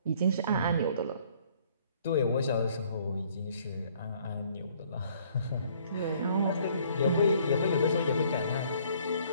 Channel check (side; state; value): both; inverted; correlation -0.61